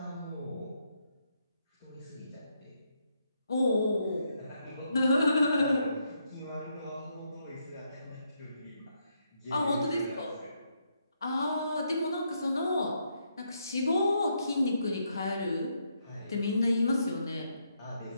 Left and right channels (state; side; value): inverted; both; correlation -0.77